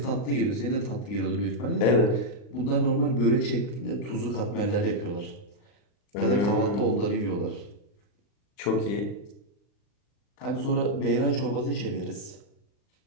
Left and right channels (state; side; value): late; right; 39 ms